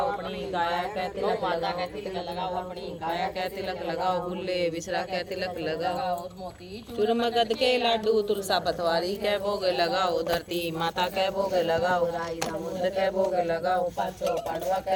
अपनी काया का तिलक माता का तिलक लगाओ। अपनी काया का तिलक लगाओ। बुल्ले बिसरा का तिलक लगाओ। चूरमगद के लाडू तुलसा पतवारी के भोग लगाओ। धरती माता के भोग लगाओ। राई दामोदर के भोग लगाओ। पांचों पांडवा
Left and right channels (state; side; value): identical; both; correlation 1.00